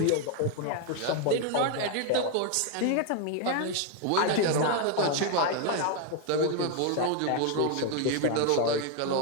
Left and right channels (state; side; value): different; both; correlation 0.01